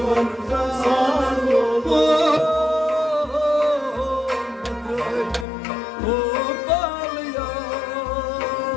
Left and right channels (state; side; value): drops out; right; at 5.5 s